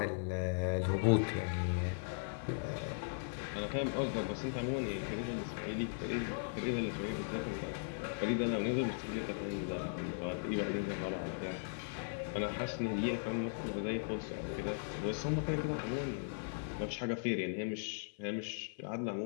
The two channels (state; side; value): silent; right; 52 dB below the other